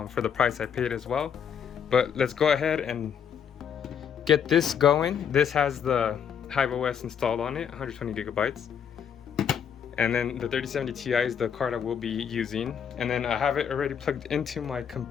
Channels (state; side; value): quieter; right; 7.8 dB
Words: for the price I paid as well. But let's go ahead and get this going. This has the HiveOs installed on it, 120GB. And then the 3070 Ti is the card I will be using. And then I have it already plugged into my